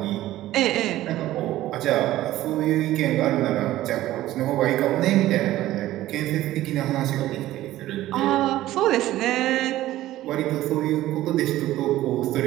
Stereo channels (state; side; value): quieter; left; 15.1 dB